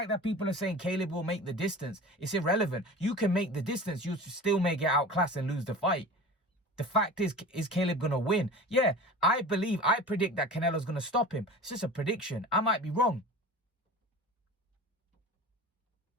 people are saying Caleb will make the distance, it's irrelevant. You can make the distance, you still may get outclassed and lose the fight. The fact is Caleb going to win? Yeah, I predict that Canelo's going to stop him. It's just a prediction. I might be wrong.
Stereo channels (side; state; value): both; normal; correlation 0.36